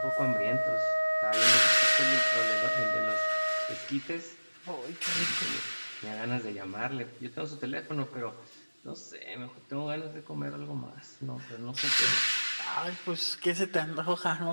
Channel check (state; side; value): inverted; both; correlation -1.00